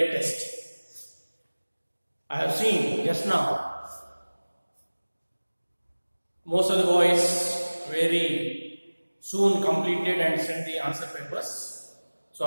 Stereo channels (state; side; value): inverted; both; correlation -1.00